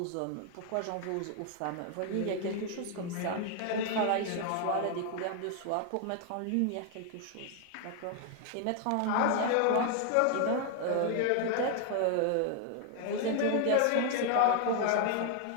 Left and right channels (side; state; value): both; different; correlation 0.00